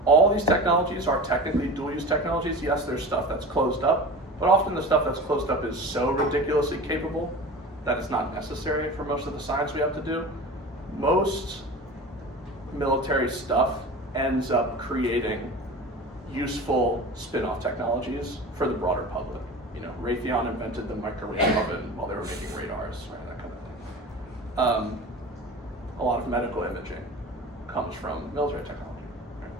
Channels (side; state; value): both; normal; correlation 0.34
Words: all these technologies are technically dual-use technologies. Yes, there's stuff that's closed up, but often the stuff that's closed up is so ridiculously capable that it's not necessary for most of the science we have to do. Most military stuff ends up creating useful spin-off technologies for the broader public. Raytheon invented the microwave oven while they were making radars, right? That kind of thing. A lot of medical imaging comes from military technology. Right?